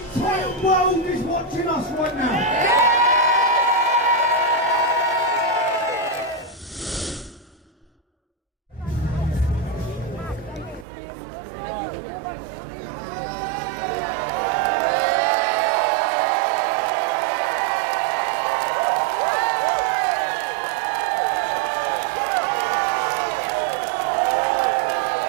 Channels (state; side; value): drops out; left; at 10.9 s